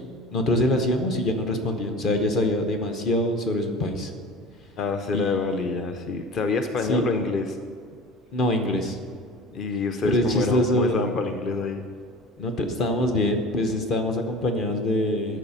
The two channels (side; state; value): both; normal; correlation 0.38